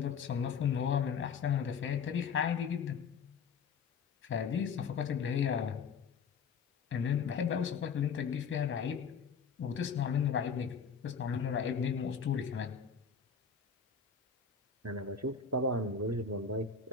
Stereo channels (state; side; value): quieter; right; 6.0 dB